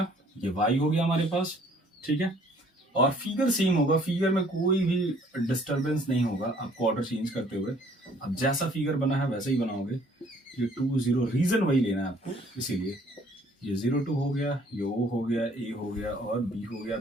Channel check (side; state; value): both; normal; correlation 0.59